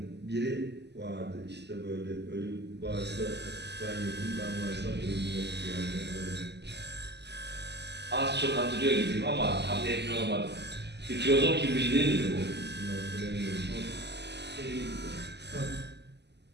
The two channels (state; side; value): late; left; 0.50 ms